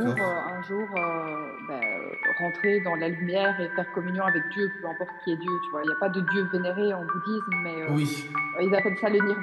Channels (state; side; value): identical; both; correlation 1.00